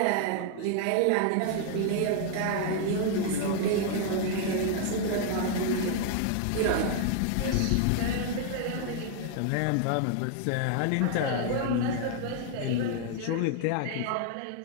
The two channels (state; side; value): different; both; correlation 0.00